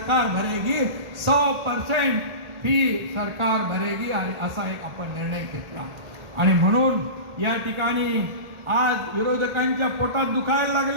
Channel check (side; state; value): left; late; 1.8 ms